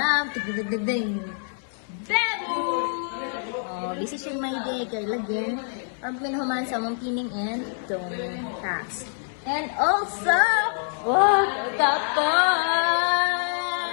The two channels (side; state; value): right; silent; 61 dB below the other